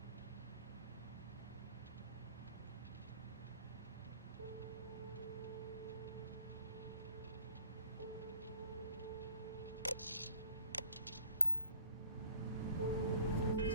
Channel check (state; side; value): inverted; both; correlation -0.51